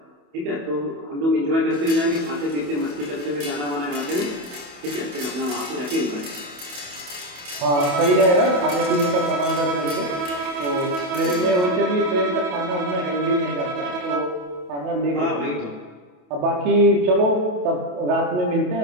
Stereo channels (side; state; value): left; late; 28 ms